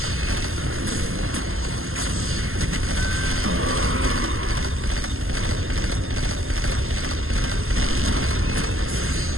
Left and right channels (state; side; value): late; left; 0.61 ms